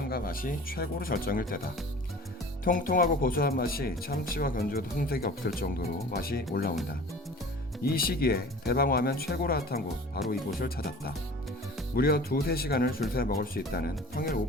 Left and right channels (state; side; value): normal; both; correlation 0.43